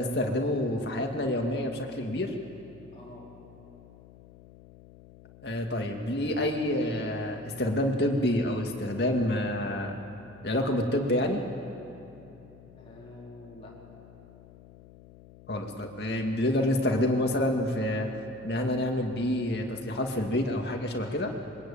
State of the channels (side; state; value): left; noise; hum, 21 dB below the sound